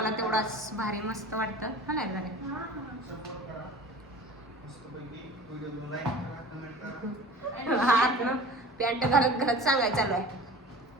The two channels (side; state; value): both; normal; correlation 0.40